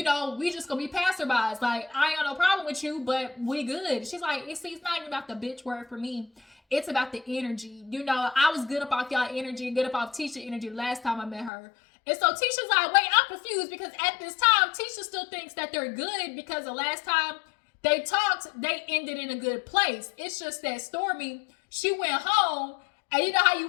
just gonna be passerbys. Like, I ain't got no problem with you, but we good. She's like, it's not even about the bitch word for me. It's about the energy. I was good up off y'all energy and good up off Tisha energy last time I met her. And so Tisha's like, wait, I'm confused because at this time, Tisha still thinks that they're good because the last time they talked, they ended in a good place. It's just that Stormy, she went home, and you know how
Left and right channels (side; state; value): right; drops out; at 11.5 s